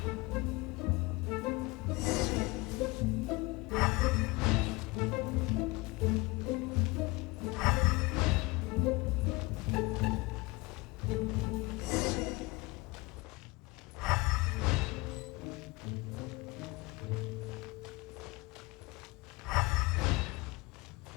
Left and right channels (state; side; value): quieter; right; 23.7 dB